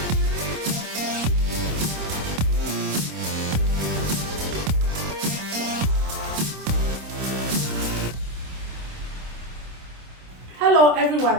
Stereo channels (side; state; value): left; late; 26 ms